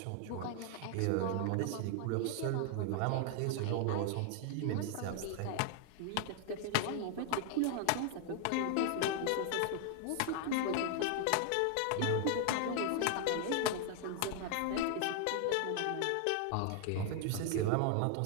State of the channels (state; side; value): different; both; correlation 0.00